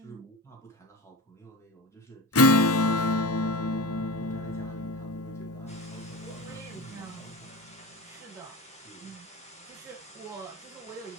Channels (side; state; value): both; normal; correlation 0.27